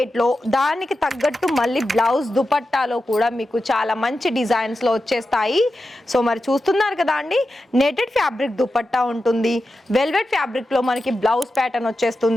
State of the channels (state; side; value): normal; both; correlation 0.91